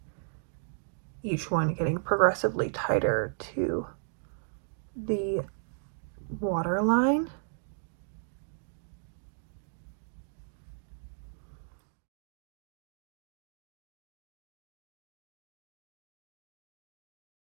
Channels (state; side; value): silent; left; digital silence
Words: each one getting progressively tighter to the waterline.